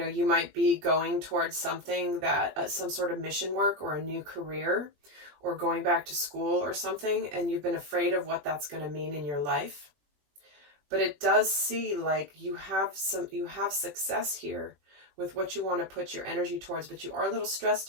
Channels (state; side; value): late; left; 20 ms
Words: you might be going towards something that, some sort of mission work or a new career or going back to school or something, and you've been afraid of what that's going to mean in your life. But it does see like you have success here with what you want to put your energy towards, but you are a little stressed